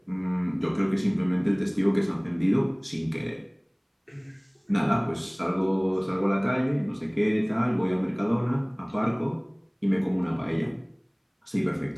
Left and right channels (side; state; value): both; identical; correlation 1.00